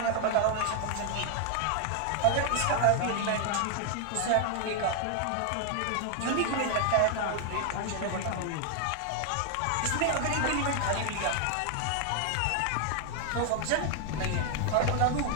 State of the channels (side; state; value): both; different; correlation 0.00